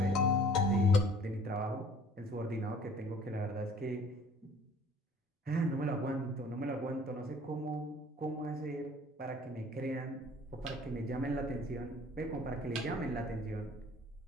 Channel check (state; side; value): normal; both; correlation 0.52